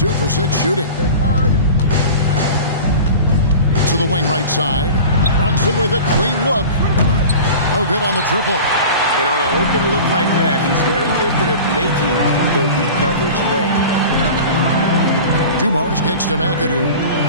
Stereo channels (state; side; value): inverted; both; correlation -0.36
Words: for 6 shooting. To the wing right side. Brunson with a clean look. No good on the triple. And on an open look like that, he's very gifted at making the weak coverage pay. Dumars kicks to McAdoo.